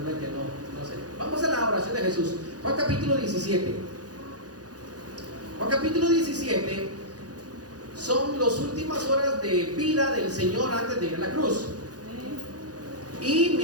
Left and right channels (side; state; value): left; late; 0.68 ms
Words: que no sé. Vamos a la oración de Jesús. Juan capítulo 17. Juan capítulo 17 son las últimas horas de vida del Señor antes de ir a la cruz. Y